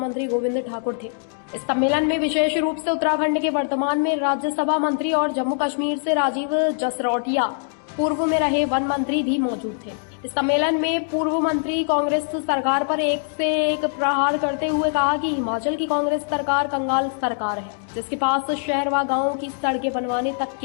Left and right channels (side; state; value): right; silent; digital silence